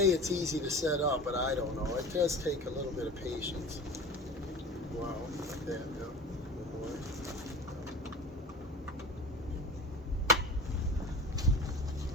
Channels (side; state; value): both; normal; correlation 0.36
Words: it's easy to set up, but I don't know. It does take a little bit of patience. Wow, like that, yeah.